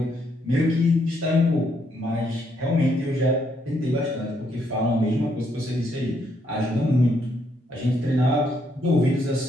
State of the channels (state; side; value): normal; both; correlation 0.74